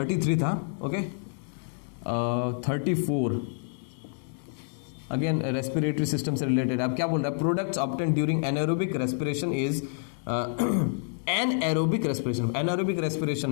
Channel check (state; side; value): silent; right; digital silence